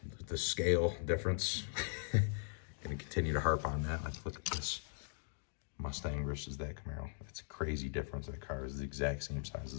the scale difference. Gonna continue to harp on that. Let's look at this Mustang versus that Camaro. That's a crazy difference. That car is the exact same size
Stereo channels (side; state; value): right; silent; digital silence